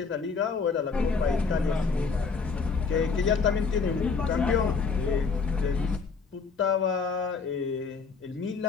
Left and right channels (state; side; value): quieter; right; 4.9 dB